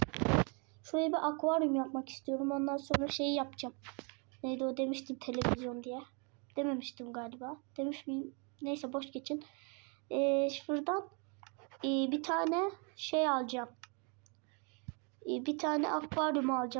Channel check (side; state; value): left; quieter; 35.1 dB